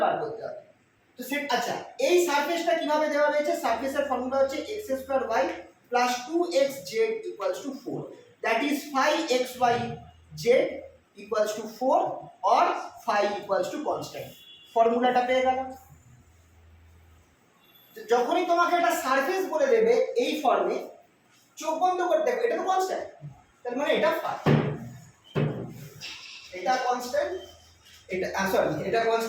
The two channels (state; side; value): identical; both; correlation 1.00